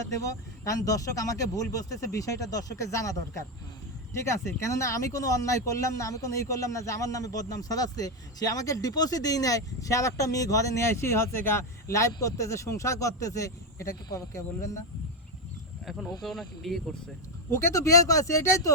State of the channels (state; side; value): normal; both; correlation 0.09